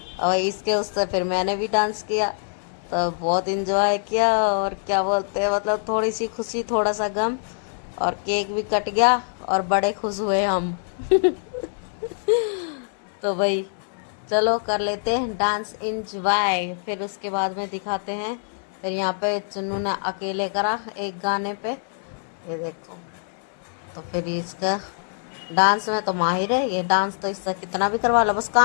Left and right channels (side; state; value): right; silent; digital silence